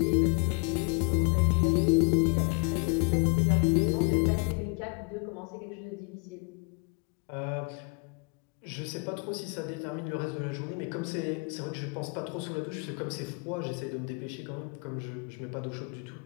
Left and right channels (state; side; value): quieter; right; 33.6 dB